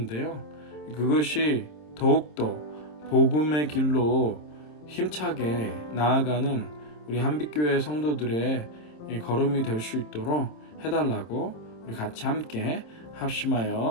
그것이 더욱더 복음의 길로 힘차게 나아가는 우리 한빛교회 성도들의 걸음이 될 수 있도록 해달라고 우리 같이 함께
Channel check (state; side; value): late; right; 27 ms